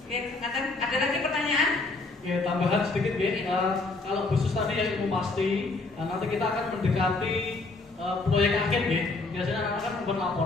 Oke, ada lagi pertanyaan? Ya, tambahan sedikit ya. Kalau khusus tadi yang ilmu pasti, nanti kita akan mendekati proyek akhir ya. Biasanya anak-anak kan membuat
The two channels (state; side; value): quieter; right; 3.5 dB